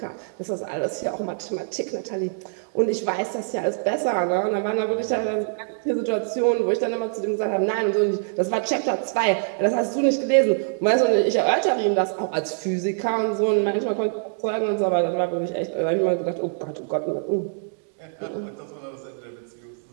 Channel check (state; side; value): silent; left; digital silence